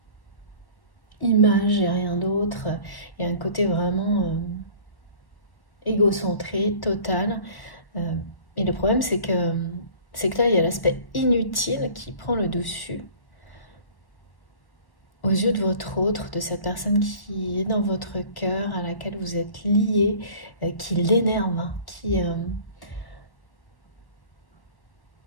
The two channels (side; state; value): right; late; 1.1 ms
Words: image et rien d'autre. Il y a un côté vraiment égocentré, total. Et le problème, c'est que là, il y a l'aspect inutile qui prend le dessus aux yeux de votre autre, de cette personne qui est dans votre cœur, à laquelle vous êtes lié, qui l'énerve, hein,